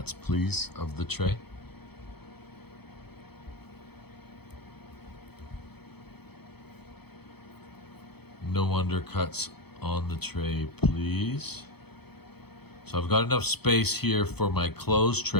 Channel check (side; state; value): right; late; 0.97 ms